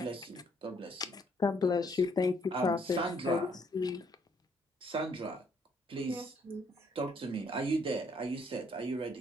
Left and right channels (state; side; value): normal; both; correlation 0.67